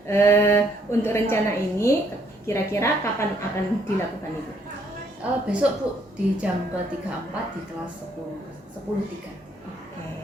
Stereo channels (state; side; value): normal; both; correlation 0.68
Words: Untuk rencana ini kira-kira kapan akan dilakukan Ibu? Besok Bu di jam ke-34 di kelas 10.3.